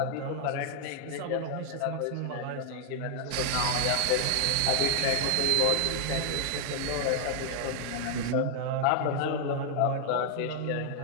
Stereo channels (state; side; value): different; both; correlation 0.00